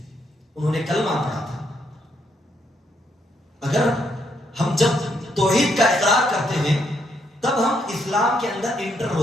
انہوں نے کلمہ پڑھا تھا. اگر ہم جب توحید کا اقرار کرتے ہیں تب ہم اسلام کے اندر انٹر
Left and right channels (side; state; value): both; normal; correlation 0.75